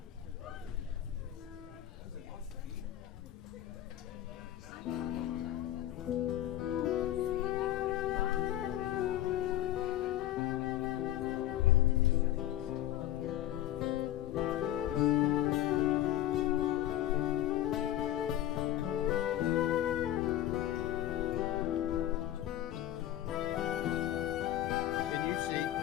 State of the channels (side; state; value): right; quieter; 13.0 dB